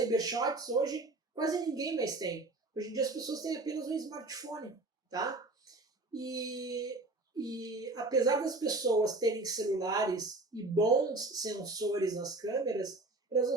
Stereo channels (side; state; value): left; quieter; 3.1 dB